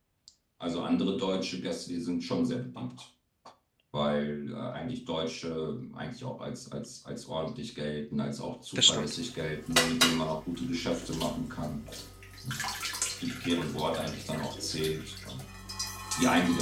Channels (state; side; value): identical; both; correlation 1.00